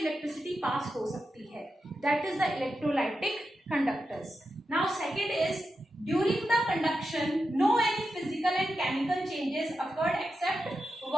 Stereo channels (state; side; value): normal; both; correlation 0.89